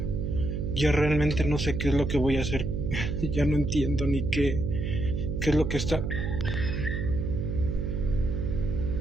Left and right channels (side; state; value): right; noise; hum, 2 dB below the sound